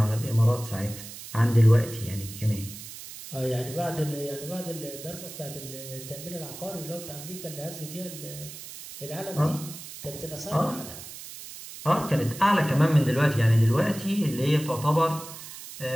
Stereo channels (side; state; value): right; noise; hiss, 13 dB below the sound